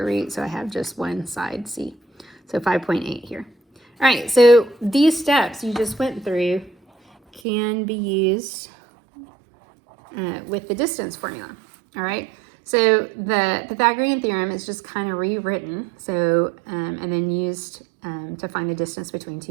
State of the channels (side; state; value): left; drops out; at 7.4 s